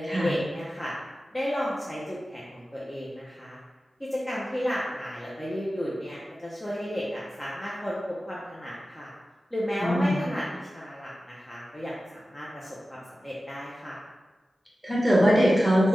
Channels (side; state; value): both; normal; correlation 0.95